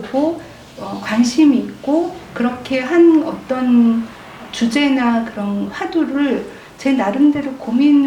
관심이 있고 그렇게 한 어떤 주제나 그런 화두를 제 나름대로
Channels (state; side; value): identical; both; correlation 1.00